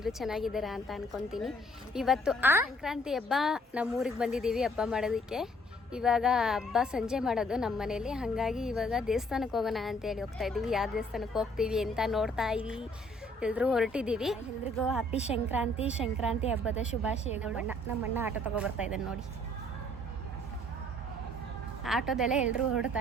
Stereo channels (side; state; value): both; normal; correlation 0.62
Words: ಚೆನ್ನಾಗಿದ್ದೀರಾ ಅಂತ ಅನ್ಕೊತೀನಿ. ಇವತ್ತು ಸಂಕ್ರಾಂತಿ ಹಬ್ಬ ನಮ್ಮೂರಿಗೆ ಬಂದಿದ್ದೀವಿ ಹಬ್ಬ ಮಾಡೋದಕ್ಕೆ. ಇವಾಗ ಹಬ್ಬ ಸಂಜೆ ಮಾಡೋದು ನಮ್ಮ ಮನೇಲಿ, ಹಾಗಾಗಿ ಇವಾಗ ದೇವಸ್ಥಾನಕ್ಕೆ ಹೋಗೋಣ ಅಂತೇಳಿ ಹೋಗ್ತಾ ಇದ್ದೀವಿ. ಯಾವ ದೇವಸ್ಥಾನಕ್ಕೆ ಹೋಗ್ತೀವಿ ಅಂತ ನೋಡ್ತಾ ಇದ್ದೀವಿ. ಎಲ್ಲರೂ ಹೊರಟಿದ್ದೀವಿ. ಎಲ್ರಿಗೂ ಹ್ಯಾಪಿ ಸಂಕ್ರಾಂತಿ ಹಬ್ಬದ ಶುಭಾಶಯಗಳು. ನಮ್ಮಣ್ಣ ಆಟೋ ತಗೊಬರ್ತಾ ಇದ್ದಾನೆ ನೋಡಿ. ಆಟೋದಲ್ಲೇ ಎಲ್ಲರೂ